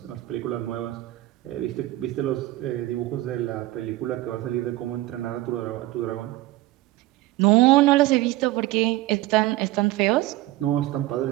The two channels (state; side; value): quieter; left; 17.3 dB